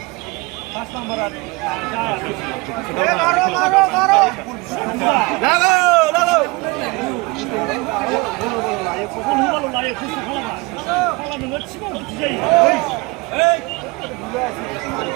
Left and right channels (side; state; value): left; quieter; 25.3 dB